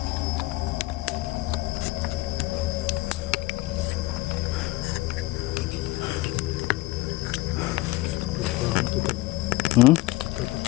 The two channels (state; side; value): quieter; right; 19.2 dB